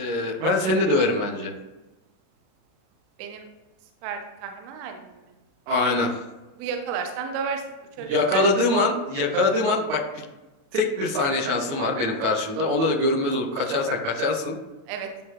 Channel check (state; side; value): late; left; 37 ms